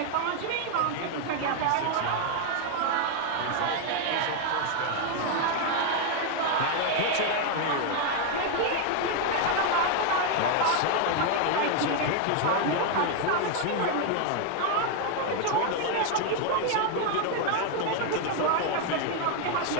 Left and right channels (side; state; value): both; different; correlation 0.01